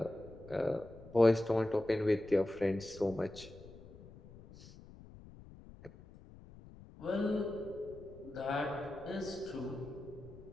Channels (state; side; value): noise; left; rumble, 19 dB below the sound